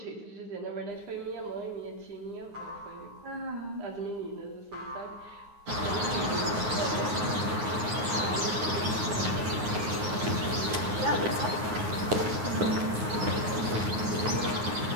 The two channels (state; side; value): late; left; 9.5 ms